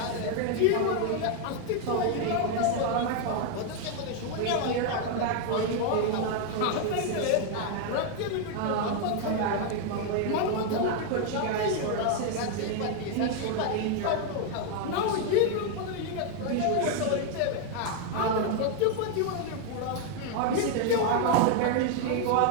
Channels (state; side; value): different; both; correlation 0.00